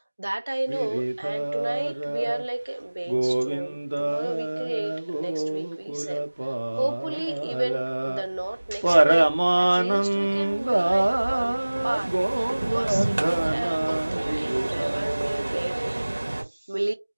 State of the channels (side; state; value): both; inverted; correlation -1.00